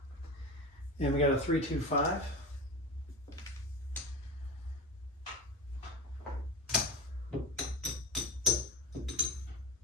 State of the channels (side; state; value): both; normal; correlation 0.25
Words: And we got a 3-2-5.